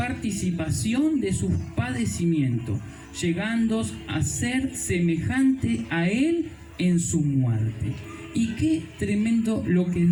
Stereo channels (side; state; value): both; identical; correlation 1.00